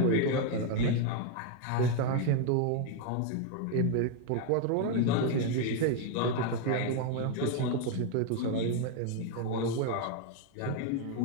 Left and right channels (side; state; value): both; different; correlation 0.01